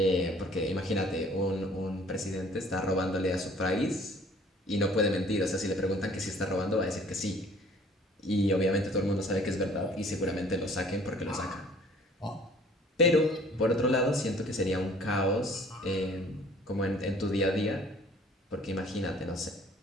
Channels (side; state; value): both; normal; correlation 0.54